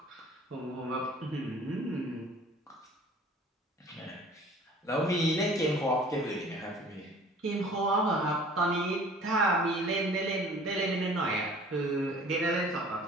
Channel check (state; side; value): normal; both; correlation 0.49